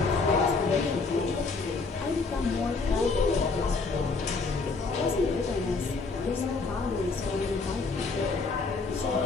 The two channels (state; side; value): quieter; right; 4.1 dB